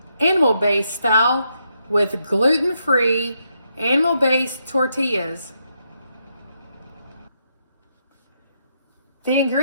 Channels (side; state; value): both; inverted; correlation -0.79